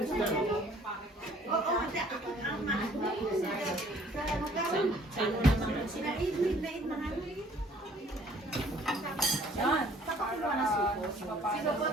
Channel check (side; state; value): both; normal; correlation 0.57